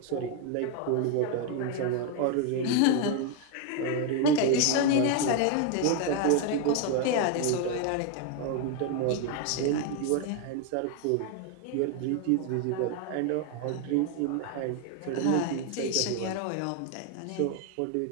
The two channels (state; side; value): different; both; correlation 0.01